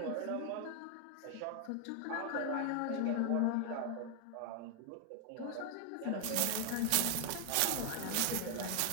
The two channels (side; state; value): both; different; correlation 0.00